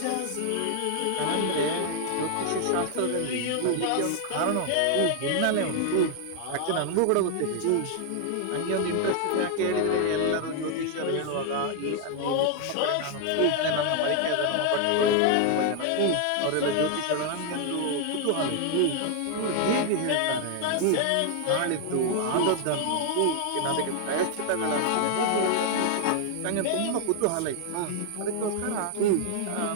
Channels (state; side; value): different; both; correlation 0.00